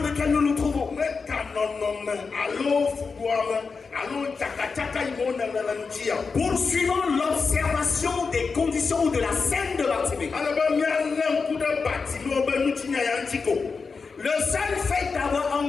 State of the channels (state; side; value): quieter; right; 4.9 dB